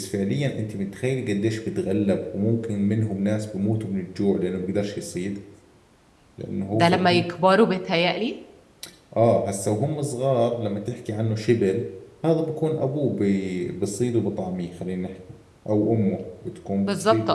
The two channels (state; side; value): identical; both; correlation 1.00